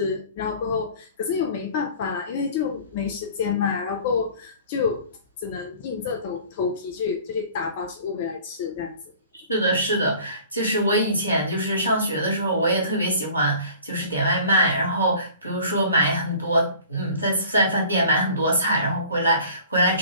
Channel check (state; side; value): inverted; both; correlation -0.47